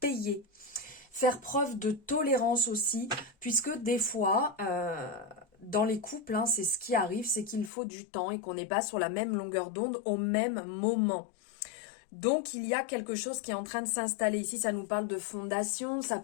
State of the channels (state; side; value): drops out; right; at 7.7 s